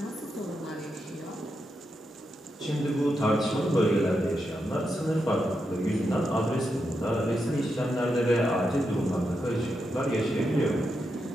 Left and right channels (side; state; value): both; normal; correlation 0.85